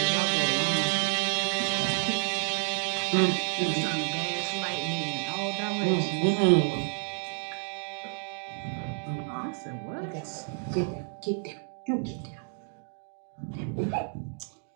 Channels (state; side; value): silent; left; digital silence